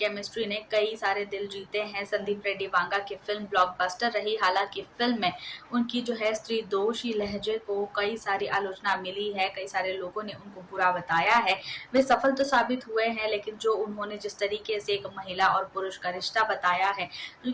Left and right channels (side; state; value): both; identical; correlation 1.00